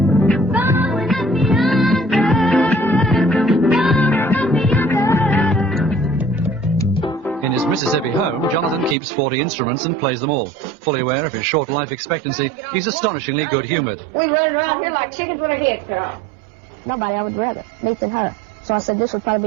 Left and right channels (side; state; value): left; drops out; at 9.0 s